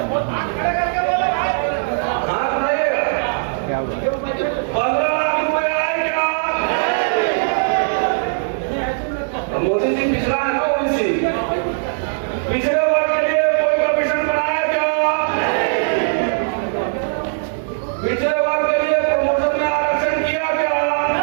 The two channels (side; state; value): left; silent; 66 dB below the other